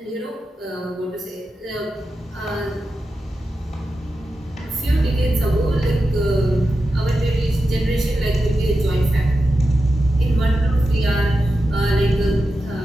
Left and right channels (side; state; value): both; normal; correlation 0.90